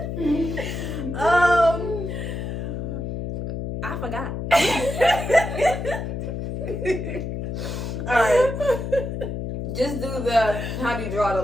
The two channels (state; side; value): noise; left; hum, 4 dB below the sound